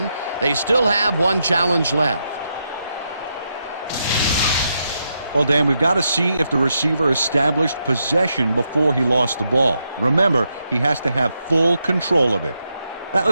they still have one challenge left. Well, Dan, we've got to see if the receiver established possession before he lost the ball. Remember, he has to have full control of it. That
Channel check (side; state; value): both; inverted; correlation -0.83